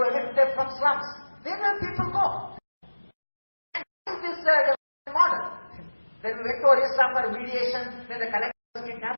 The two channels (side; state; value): both; inverted; correlation -1.00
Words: evict them from slums. Where will people go? And this is the model. Then we went to Orissa for mediation, then the collector kidnapped.